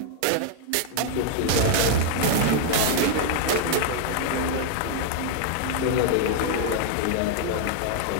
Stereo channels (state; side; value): different; both; correlation 0.00